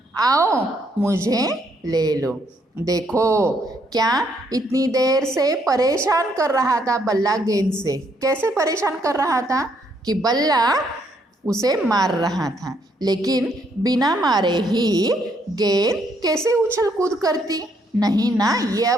आओ मुझे ले लो। देखो क्या इतनी देर से परेशान कर रहा था बल्ला गेंद से, कैसे परेशान कर रहा था कि बल्ला उसे मार रहा था, लेकिन बिना मारे ही गेंद कैसे उछल कूद करती, नहीं ना। ये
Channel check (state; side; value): normal; both; correlation 0.71